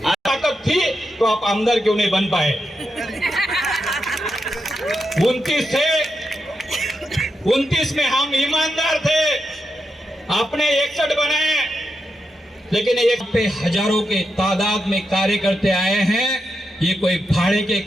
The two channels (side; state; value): both; normal; correlation 0.86